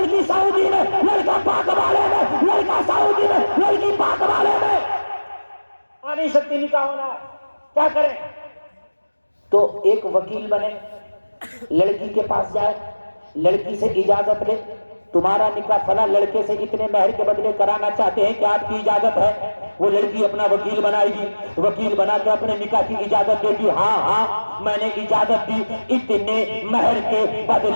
سعودی میں، لڑکا پاک والے میں، لڑکا سعودی میں، لڑکی پاک والے میں. آ نہیں سکتی، نکاح ہونا ہے، کیا کریں؟ تو ایک وکیل بنے، لڑکی کے پاس جائے، لڑکی سے اجازت لے، تمہارا نکاح فلاں لڑکے سے اتنے مہر کے بدلے کرانا چاہتے ہیں، کیا آپ کی اجازت ہے؟ وہ لڑکی اپنا وکیل بنائے گی، وکیل بنا کے اپنے نکاح کی اجازت دے گی. ہاں ہاں میں نے اجازت دی، اتنے مہر کے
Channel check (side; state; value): both; inverted; correlation -1.00